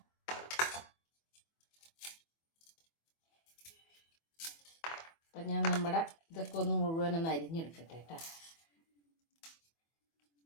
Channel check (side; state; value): right; late; 24 ms